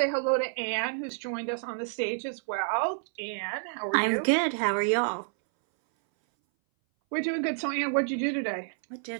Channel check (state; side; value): silent; left; 59 dB below the other